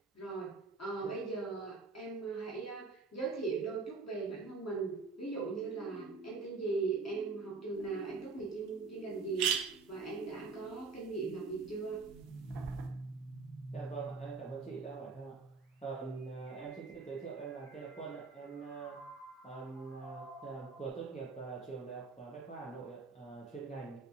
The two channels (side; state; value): left; quieter; 4.5 dB